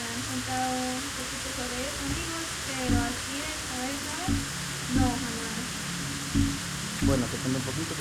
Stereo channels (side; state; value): both; identical; correlation 1.00